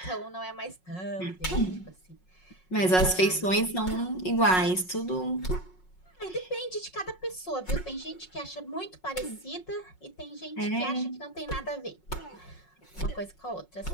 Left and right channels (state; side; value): late; right; 5.5 ms